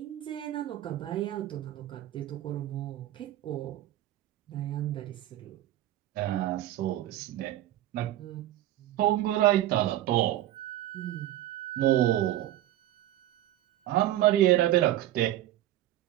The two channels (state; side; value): quieter; left; 14.0 dB